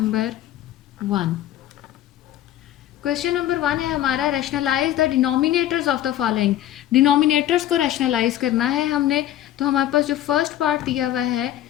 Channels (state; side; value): quieter; right; 12.5 dB